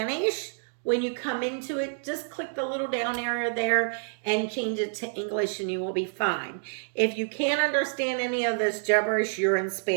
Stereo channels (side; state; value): left; silent; digital silence